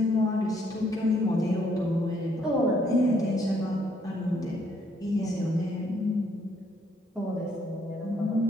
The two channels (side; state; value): both; normal; correlation 0.69